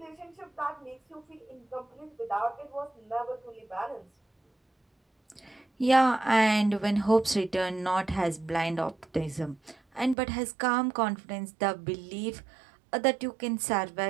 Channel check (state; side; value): drops out; left; at 10.2 s